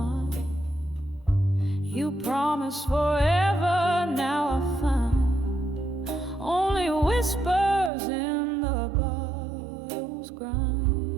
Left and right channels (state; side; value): drops out; left; at 7.9 s